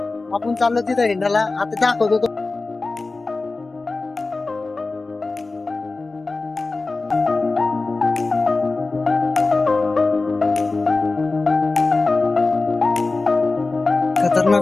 आपण चाललो तिथं हिंडाला. आता दाखवतो तो.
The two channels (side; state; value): right; quieter; 3.5 dB